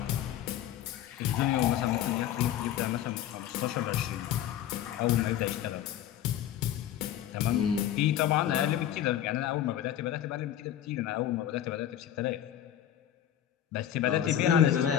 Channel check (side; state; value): right; quieter; 11.1 dB